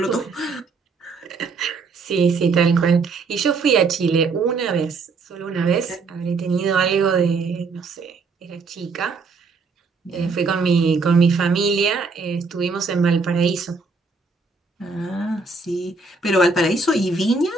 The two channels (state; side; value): quieter; left; 4.3 dB